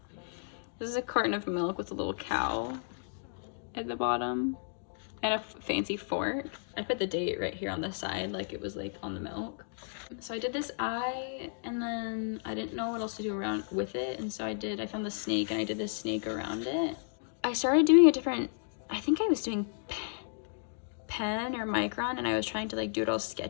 This is a carton of milk with a little cow at the bottom. And a fancy fork. I put the date right here on the side like it was like on the milk. So I did this eye, and then I didn't know what else to do around with it, and so I found the snake, and I did this snake around it. I started doing a different, I think I was doing pen or micron, and I was trying to like do it all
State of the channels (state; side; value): silent; right; digital silence